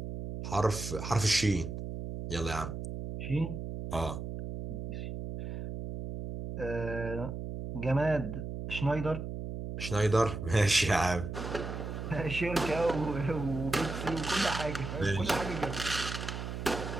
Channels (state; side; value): noise; right; hum, 6 dB below the sound